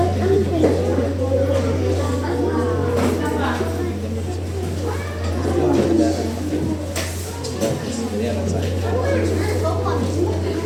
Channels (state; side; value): identical; both; correlation 1.00